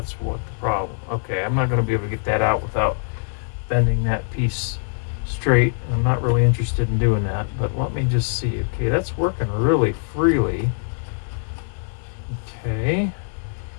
what the problem. Okay, I'm not going to be able to get that out without bending that piece straight. I'm not really interested in doing that, but let me just see. Okay, that's working really freely. Okay,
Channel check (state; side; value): silent; right; digital silence